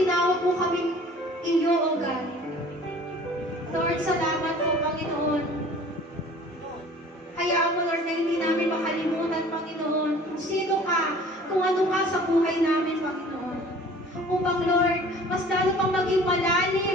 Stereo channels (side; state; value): both; normal; correlation 0.48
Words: mo kami iyo, O God. Lord, salamat po, Panginoon. Hayaan mo, Lord, na hindi namin makalimutan, Panginoon, kung sino ka, kung ano ka sa buhay namin, Panginoon. Upang, Lord, mas lalo pang maging